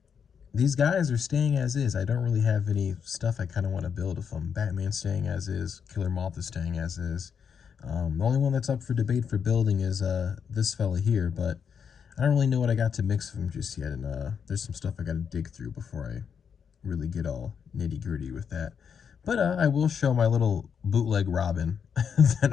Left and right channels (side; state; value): right; quieter; 7.0 dB